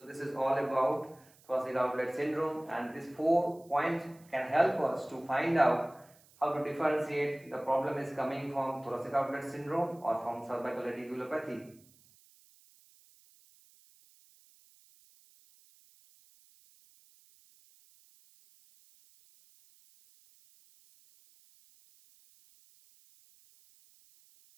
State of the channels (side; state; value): right; noise; hiss, 28 dB below the sound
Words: this is all about thoracic outlet syndrome, and these 4 points can help us to find out how to differentiate the problem is coming from thoracic outlet syndrome or from cervical radiculopathy.